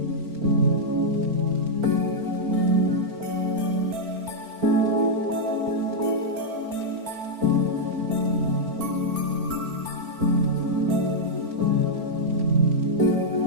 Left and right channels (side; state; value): left; late; 4.4 ms